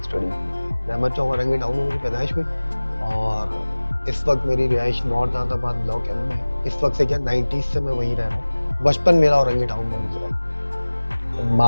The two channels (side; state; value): both; inverted; correlation -1.00